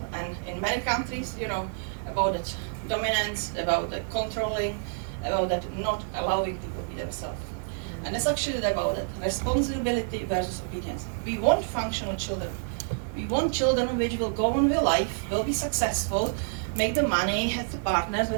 and in many countries, about that dominance, about the controlling, about that not allowing people to be themselves. And it's actually about that responsibility versus obedience. We want functional children. We want children which will go on with life, will be successful, make the money, have the partners,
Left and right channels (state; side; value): silent; left; digital silence